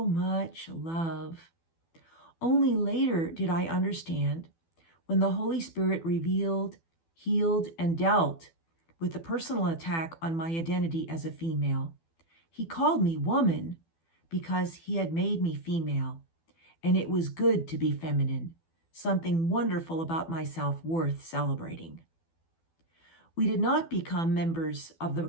much love. Only later did I understand, when the Holy Spirit revealed, healed, and dealt with the personal attack on my identity as a female. He called me woman because he had made me female, and it was good to be feminine, something wonderful about myself worth celebrating. We did not become members of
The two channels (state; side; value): late; right; 12 ms